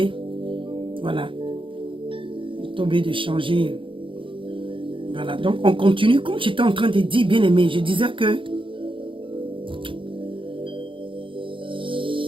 Voilà. J'ai tombé de changer. Voilà. Donc, on continue. Comme j'étais en train de dire, bien-aimé, je disais que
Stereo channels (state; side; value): late; left; 0.25 ms